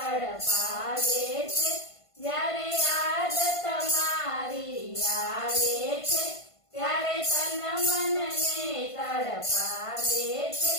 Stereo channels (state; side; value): late; right; 1.5 ms